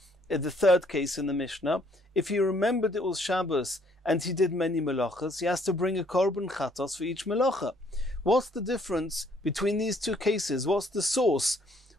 In the third case in the Mishnah, if he remembered it was Shabbos and he did many melachos, he has to bring a korban chatos for each melacha. What's the difference between these 2 cases? What's the source?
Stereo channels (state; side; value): normal; both; correlation 0.65